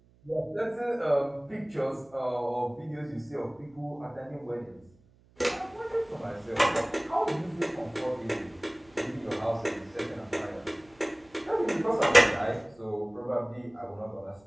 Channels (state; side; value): noise; right; hum, 30 dB below the sound